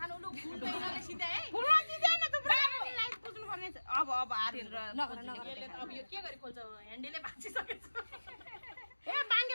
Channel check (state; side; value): inverted; both; correlation -1.00